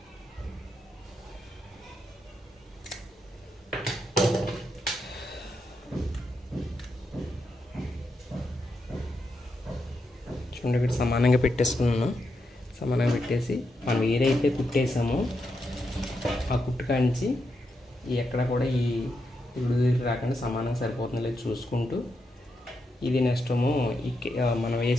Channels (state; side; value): normal; both; correlation 0.84